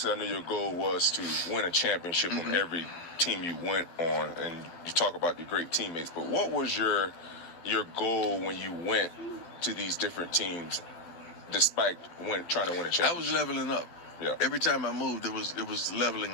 I know your goal was to win a championship on every team you went on, and you talk about the great teammates. But what was your goal when you went to these different teams, despite trying to win a championship? I was leveling up. Yeah. Every time I moved, it was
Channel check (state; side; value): late; right; 12 ms